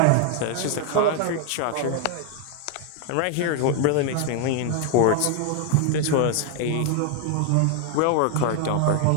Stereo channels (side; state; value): both; different; correlation 0.00